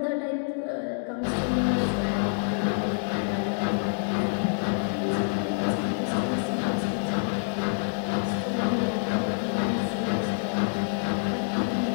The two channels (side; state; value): right; silent; digital silence